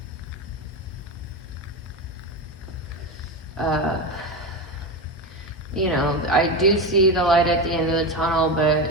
you know, I do see the light at the end of the tunnel, but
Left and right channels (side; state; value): both; normal; correlation 0.18